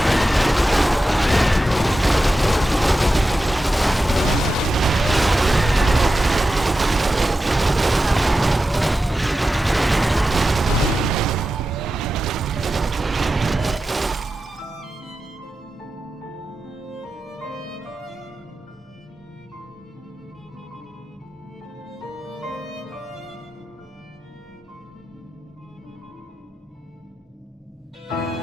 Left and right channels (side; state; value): both; normal; correlation 0.92